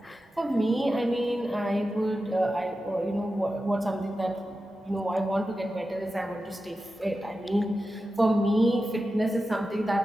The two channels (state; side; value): normal; both; correlation 0.92